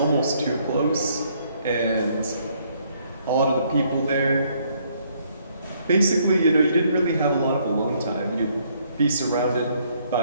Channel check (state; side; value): inverted; both; correlation -0.68